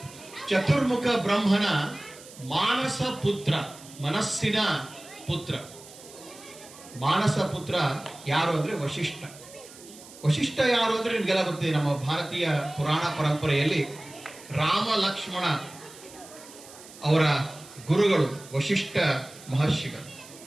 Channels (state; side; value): noise; right; hiss, 19 dB below the sound